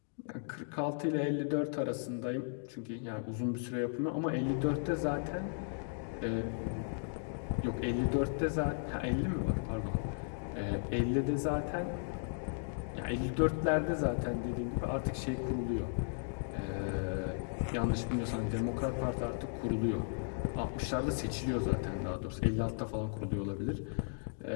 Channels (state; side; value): silent; right; digital silence